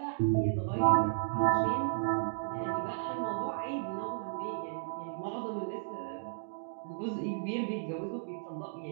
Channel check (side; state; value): left; silent; digital silence